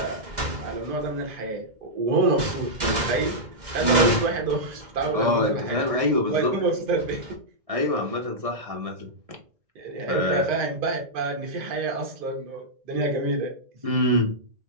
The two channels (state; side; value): late; left; 2.0 ms